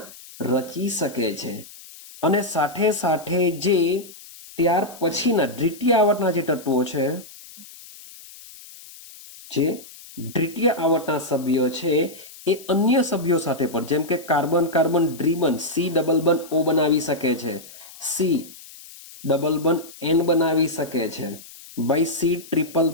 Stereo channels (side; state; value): left; noise; hiss, 18 dB below the sound